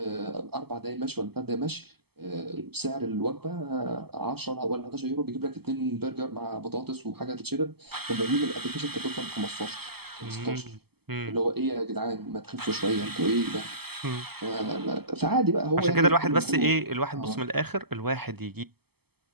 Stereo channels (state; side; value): late; left; 0.96 ms